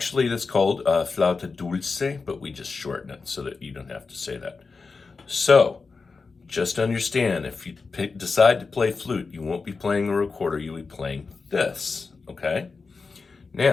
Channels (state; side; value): quieter; right; 4.5 dB